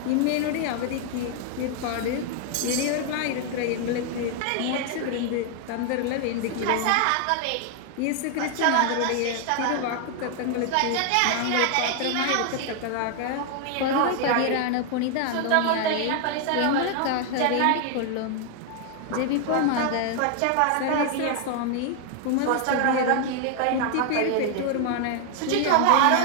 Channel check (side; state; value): both; different; correlation 0.00